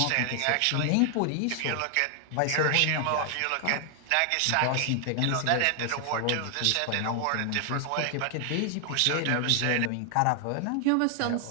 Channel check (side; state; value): both; different; correlation 0.00